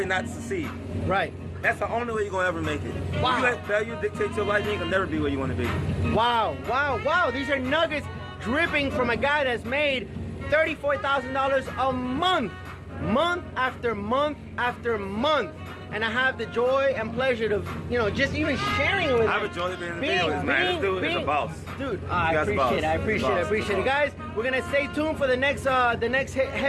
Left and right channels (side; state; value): both; identical; correlation 1.00